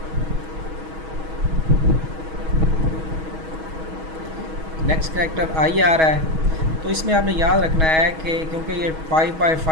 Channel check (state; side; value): late; left; 6.3 ms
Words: नेक्स्ट करैक्टर आई आ रहा है। तो इसमें आपने याद रखना है कि क्योंकि ये